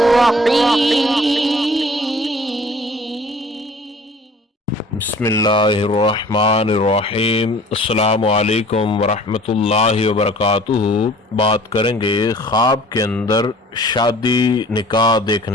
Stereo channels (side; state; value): both; normal; correlation 0.50